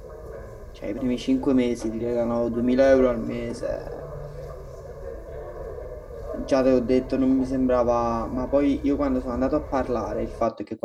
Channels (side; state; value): both; identical; correlation 1.00